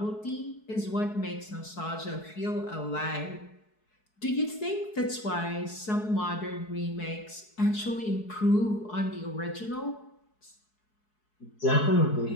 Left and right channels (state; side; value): late; right; 4.7 ms